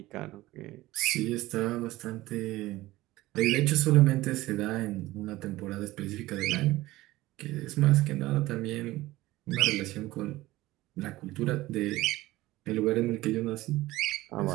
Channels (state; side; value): quieter; left; 17.7 dB